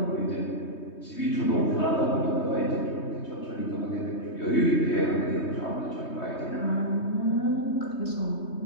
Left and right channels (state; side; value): late; right; 3.2 ms